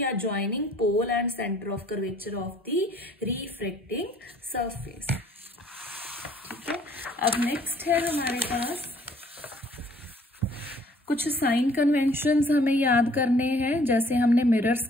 joining pole and centre of curvature of the refracting surface. ठीक है, अब नेक्स्ट है हमारे पास कुछ साइन कन्वेंशंस हमें याद करने हैं। जैसे हमने मिरर्स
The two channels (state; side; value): normal; both; correlation 0.58